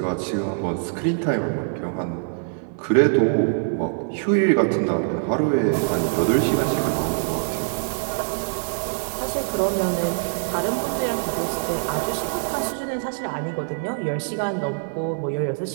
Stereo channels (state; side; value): silent; left; digital silence